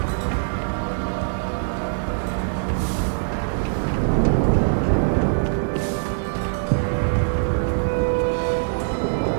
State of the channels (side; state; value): left; silent; digital silence